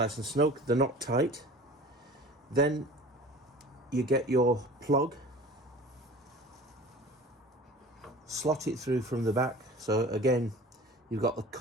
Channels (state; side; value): normal; both; correlation 0.41